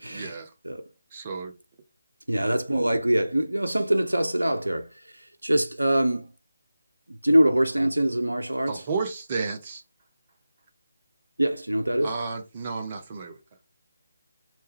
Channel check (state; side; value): inverted; both; correlation -0.96